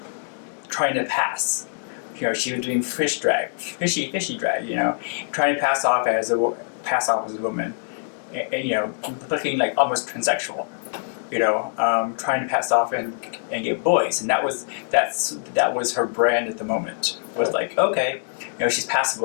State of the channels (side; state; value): right; silent; digital silence